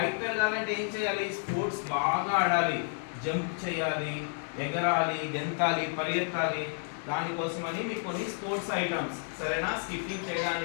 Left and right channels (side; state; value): right; silent; 55 dB below the other